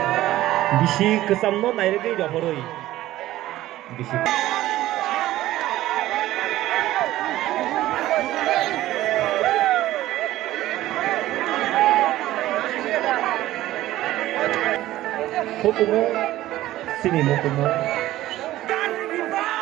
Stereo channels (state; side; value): quieter; left; 15.2 dB